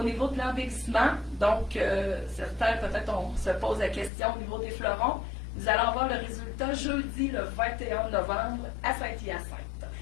niveau de l'embellissement, donc certains peut-être on se pose la question au niveau des fleurons. Nous allons avoir le résultat jeudi le 21 novembre à Saint-Hyacinthe.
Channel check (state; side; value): drops out; right; at 4.1 s